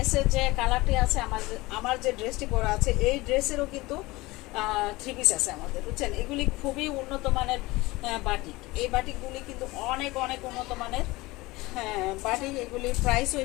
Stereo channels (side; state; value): right; quieter; 21.1 dB